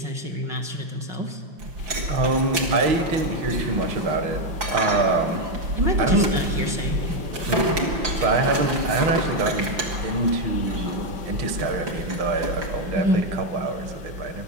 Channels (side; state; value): left; late; 5.8 ms